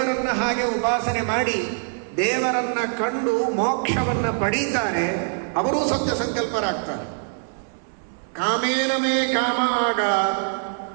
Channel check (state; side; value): silent; left; 59 dB below the other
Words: ಹಾಗೆ ಉಪಾಸನೆ ಮಾಡಿ ದೇವರನ್ನ ಕಂಡು ಮೋಕ್ಷವನ್ನು ಪಡೀತಾರೆ ಅವರೂ ಸತ್ಯ ಸಂಕಲ್ಪರಾಗ್ತಾರೆ. ಕಾಮೇನ ಮೇ ಕಾಮ ಆಗ,